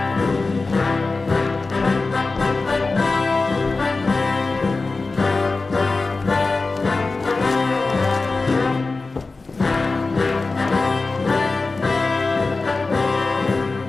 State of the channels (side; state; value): right; quieter; 3.7 dB